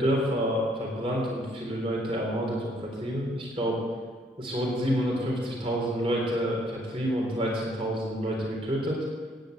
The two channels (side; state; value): both; normal; correlation 0.66